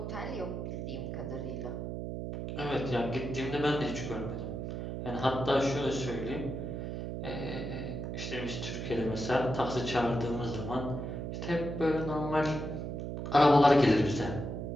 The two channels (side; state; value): right; noise; hum, 5 dB below the sound